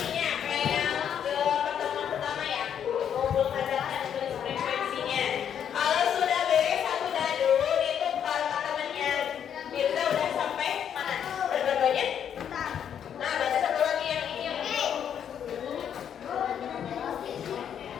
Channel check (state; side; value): quieter; right; 8.8 dB